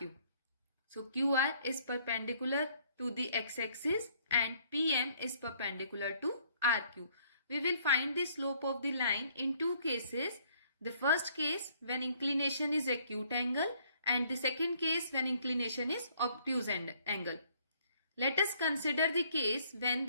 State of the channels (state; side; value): inverted; both; correlation -0.63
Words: So, QR is perpendicular to the x-axis and PM is perpendicular to RQ. We will find the slope of the line in two cases. The first case when inclination is acute angle and the second case when inclination is obtuse angle. Let us consider the case when